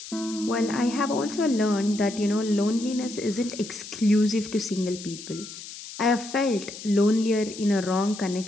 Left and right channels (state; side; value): noise; left; hiss, 13 dB below the sound